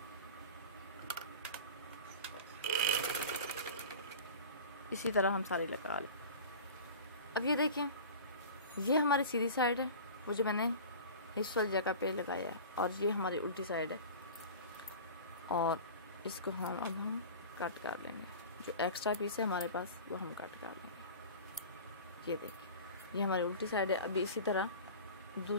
इसी तरह हम सारी लगा लें। अब ये देखें, ये हमारी सीधी साइड है, वो जो मैंने हिप्स वाली जगह पे लगाया है, और ये हमारी उल्टी साइड है। और इसको हम अब कट कर लेंगे। जो एक्स्ट्रा पीस है हमारे पास वो हम कट कर लेंगे। ये देखिए, ये हमारी उल्टी साइड है। अभी इसी तरह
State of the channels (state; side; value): inverted; both; correlation -0.37